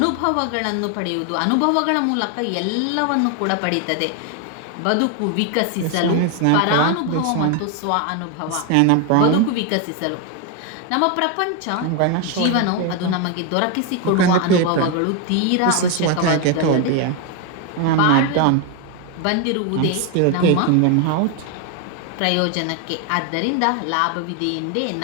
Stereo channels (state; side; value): different; both; correlation 0.01